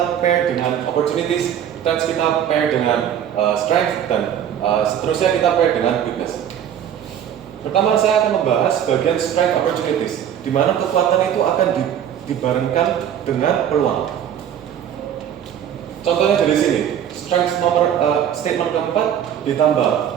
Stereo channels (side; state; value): left; quieter; 9.6 dB